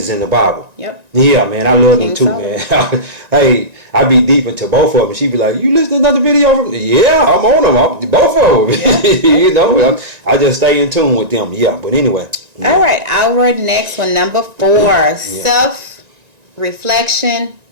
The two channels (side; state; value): left; late; 1.9 ms